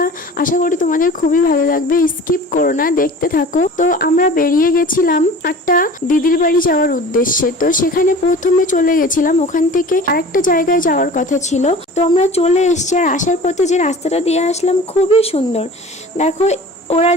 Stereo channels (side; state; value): both; normal; correlation 0.41